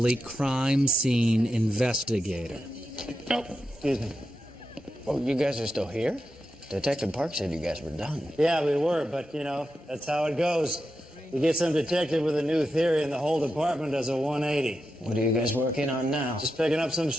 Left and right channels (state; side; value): normal; both; correlation 0.89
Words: crime scene investigator. Oh, excuse me. Oh, you guys are still here? Detective Park said you guys were done. Yeah, we were, but, you know, that's how it goes. You get some detective with a new theory and the whole department does a 180. What are you guys working on now? Just picking up some